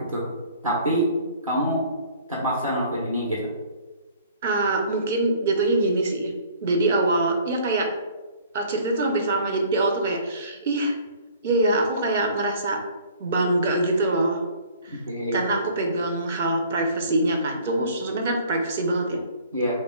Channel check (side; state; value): both; inverted; correlation -0.53